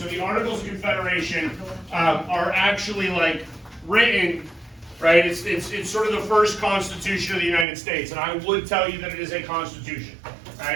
the Articles of Confederation are actually like written, right? It's sort of the first Constitution of the United States, and I would tell you that it is a Constitution,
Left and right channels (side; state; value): left; drops out; at 7.7 s